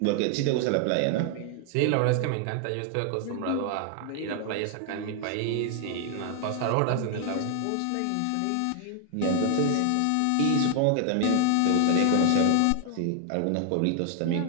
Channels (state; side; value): different; both; correlation 0.00